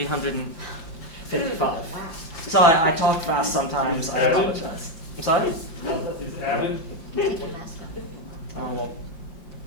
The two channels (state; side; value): late; right; 5.9 ms